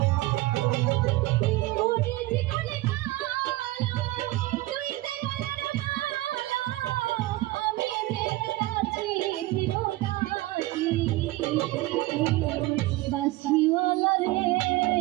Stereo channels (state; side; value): quieter; left; 18.8 dB